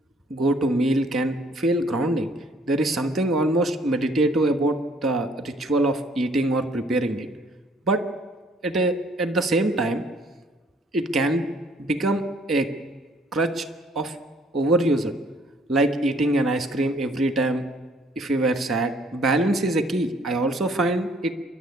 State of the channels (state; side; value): normal; both; correlation 0.61